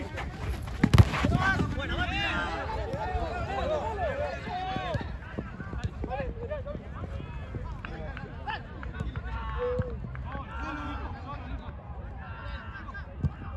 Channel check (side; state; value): both; identical; correlation 1.00